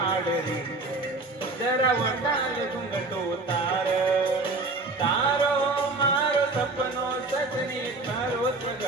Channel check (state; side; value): quieter; left; 3.2 dB